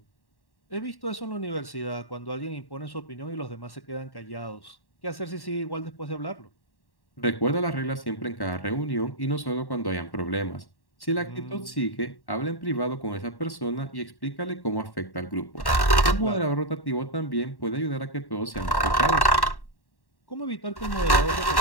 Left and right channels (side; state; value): right; late; 1.1 ms